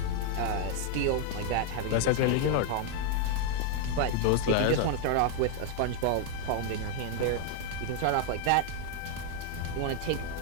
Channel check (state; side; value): different; both; correlation 0.00